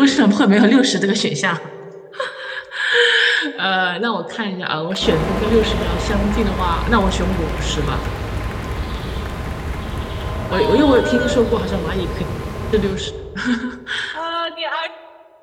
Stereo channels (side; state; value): both; identical; correlation 1.00